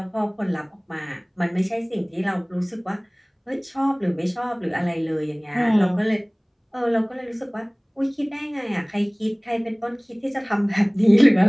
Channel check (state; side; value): identical; both; correlation 1.00